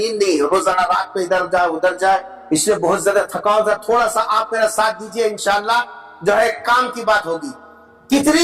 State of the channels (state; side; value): identical; both; correlation 1.00